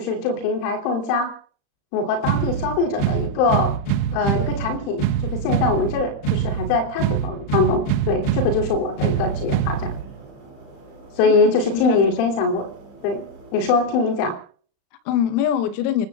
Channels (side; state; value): right; late; 35 ms